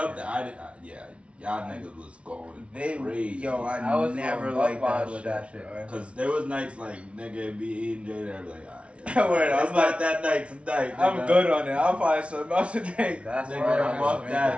fucking- that, yeah, y'all niggas was going They, crazy. yo, I I was never going liked buck that wild with shit. that shit. bro. Cause there was nights like nigga be eating J and I'd be like, alright. Word, It's I'm not like- that night tonight. I'm nigga. good on it. I'll find something else to take. That's Nigga, why I'm I off was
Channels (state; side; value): late; left; 0.061 ms